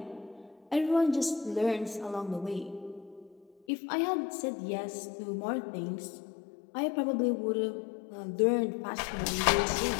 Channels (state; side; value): drops out; right; at 3.5 s